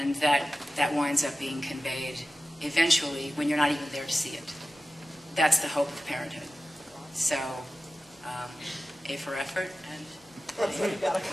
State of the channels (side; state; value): both; normal; correlation 0.94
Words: that winds up being conveyed eventually when you're not even there to see it. That's the hope of parenthood. So, A for effort, and You got a